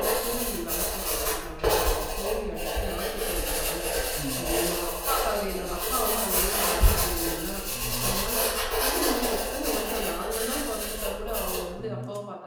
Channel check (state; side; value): identical; both; correlation 1.00